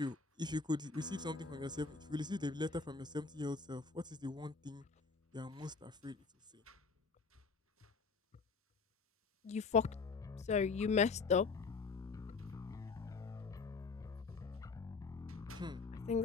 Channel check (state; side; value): quieter; right; 4.5 dB